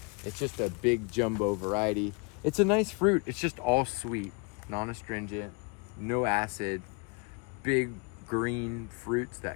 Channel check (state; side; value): quieter; right; 31.5 dB